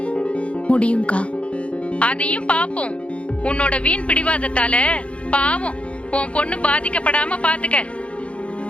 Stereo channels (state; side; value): late; right; 0.061 ms